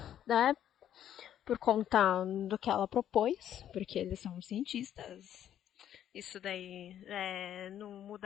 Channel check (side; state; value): right; quieter; 10.6 dB